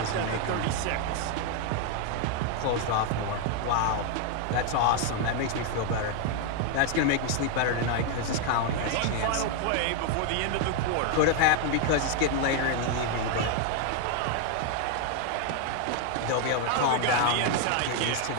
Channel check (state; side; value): different; both; correlation 0.01